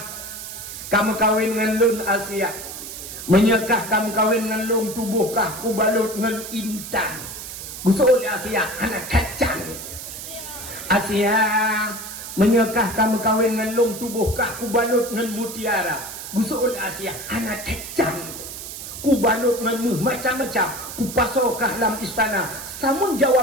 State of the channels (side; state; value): right; noise; hiss, 10 dB below the sound